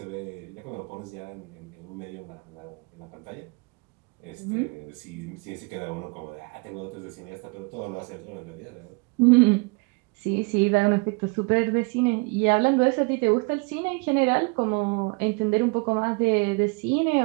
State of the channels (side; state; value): left; quieter; 30.4 dB